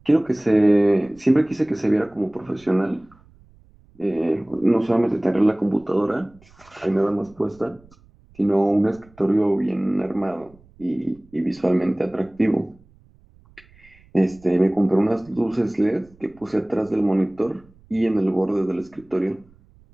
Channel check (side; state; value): right; noise; rumble, 28 dB below the sound